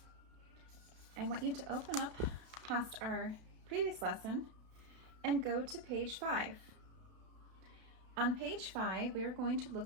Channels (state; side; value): late; left; 32 ms